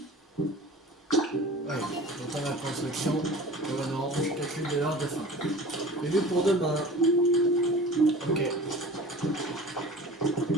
Allez, j'entends la construction. Oh non, je calcule que pour demain. Ok.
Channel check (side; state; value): both; normal; correlation 0.40